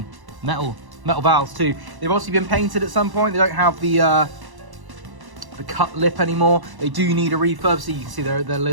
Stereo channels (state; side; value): late; left; 1.0 ms